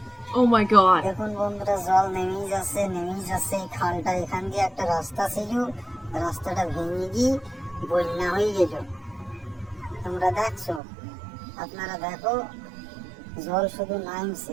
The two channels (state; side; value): drops out; left; at 10.8 s